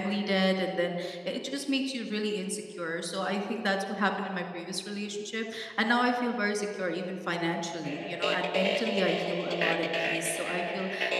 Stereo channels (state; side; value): identical; both; correlation 1.00